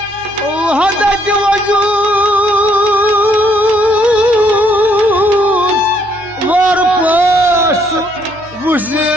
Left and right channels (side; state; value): left; noise; hum, 25 dB below the sound